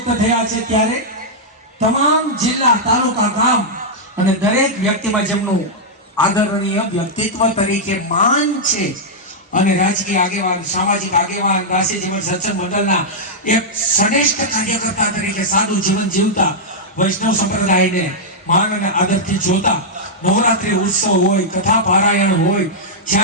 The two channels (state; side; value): normal; both; correlation -0.07